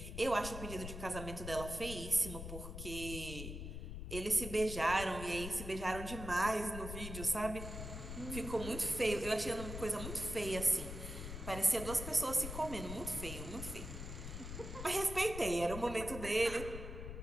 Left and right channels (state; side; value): noise; left; rumble, 8 dB below the sound